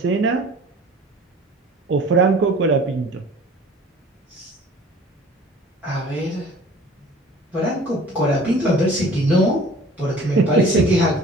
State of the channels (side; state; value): both; normal; correlation 0.47